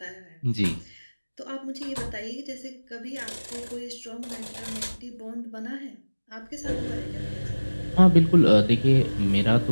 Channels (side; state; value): both; inverted; correlation -1.00